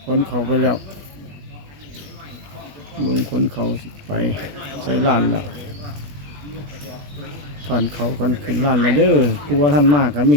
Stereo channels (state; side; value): late; left; 20 ms